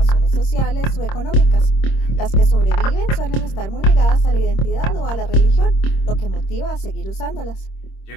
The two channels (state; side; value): late; right; 26 ms